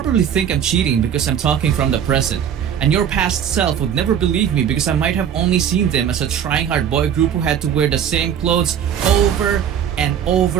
think I'm cheating because I'm talking from the present. And your past self would never believe me because I might have only seen them as a trying hard boy group who had to wear the same clothes over and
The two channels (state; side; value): quieter; left; 8.8 dB